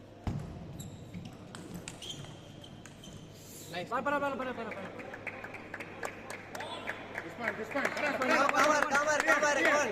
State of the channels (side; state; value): both; identical; correlation 1.00